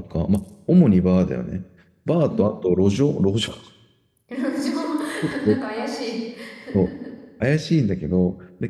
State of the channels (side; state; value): both; identical; correlation 1.00